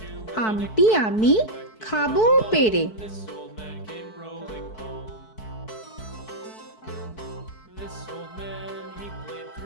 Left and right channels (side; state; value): right; late; 4.6 ms